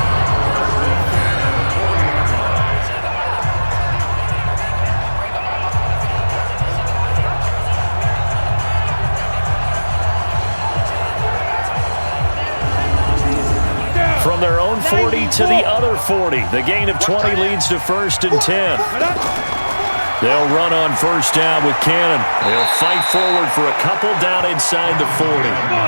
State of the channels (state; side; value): inverted; both; correlation -1.00